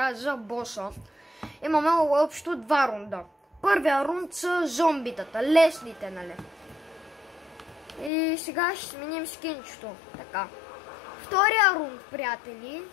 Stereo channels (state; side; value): drops out; right; at 8.1 s